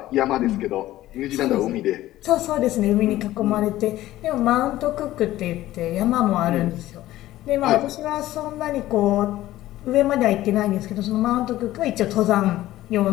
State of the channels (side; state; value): right; quieter; 15.2 dB